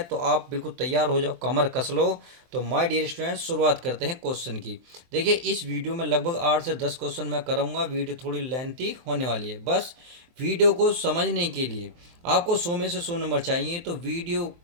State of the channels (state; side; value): late; left; 23 ms